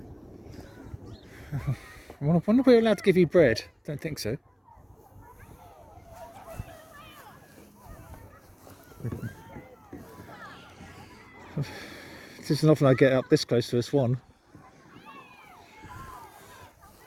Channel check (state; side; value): identical; both; correlation 1.00